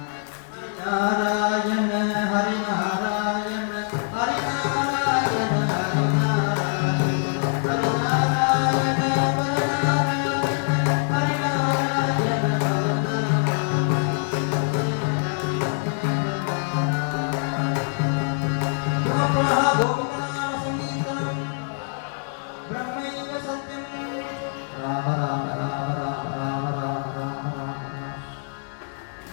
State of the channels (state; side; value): silent; right; digital silence